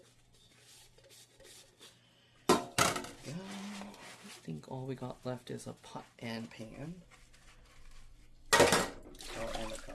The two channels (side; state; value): both; identical; correlation 1.00